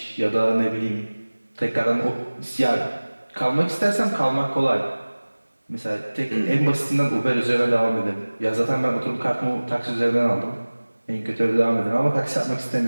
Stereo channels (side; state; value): both; inverted; correlation -1.00